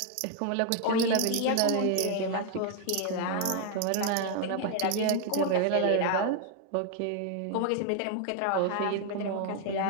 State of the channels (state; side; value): different; both; correlation 0.00